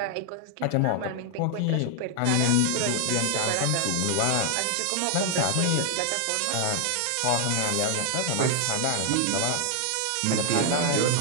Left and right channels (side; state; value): both; different; correlation 0.00